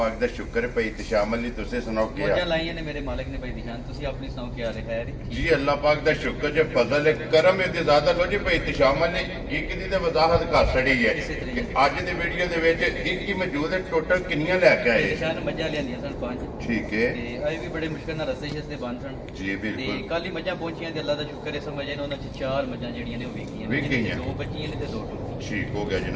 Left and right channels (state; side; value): identical; both; correlation 1.00